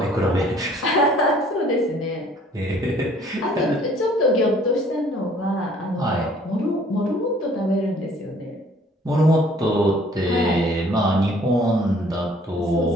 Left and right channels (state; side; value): normal; both; correlation 0.57